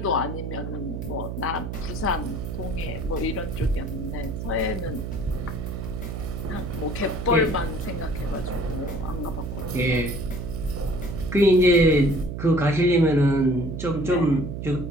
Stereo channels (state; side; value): noise; right; hum, 6 dB below the sound